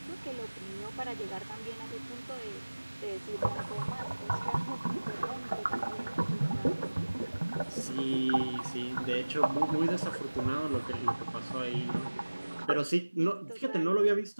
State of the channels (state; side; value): inverted; both; correlation -1.00